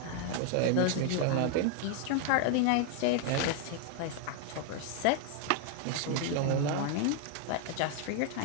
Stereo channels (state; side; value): different; both; correlation 0.00